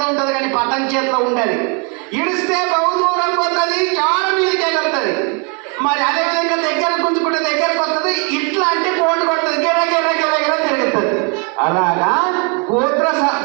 ఉంటుంది, కానీ పతంగ్ చేతిలో ఉండదు. ఇడిస్తే బహుదూరం పోతుంది, చాలా మీదకి ఎగురుతుంది. మరి అదేవిధంగా దగ్గర గుంజుకుంటే దగ్గరకు వస్తుంది. ఇట్లా అంటే కోటు కొడుతుంది, గిర గిర గిర గిర తిరుగుతుంది. అలాగా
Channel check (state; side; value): quieter; left; 35.0 dB